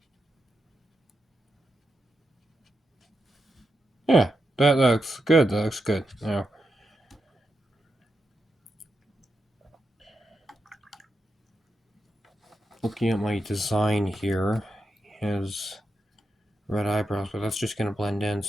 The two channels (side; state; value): both; normal; correlation 0.86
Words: Yeah, that looks good. That looks good. Now, looking at my design here, he has red eyebrows, but that's just going to blend in,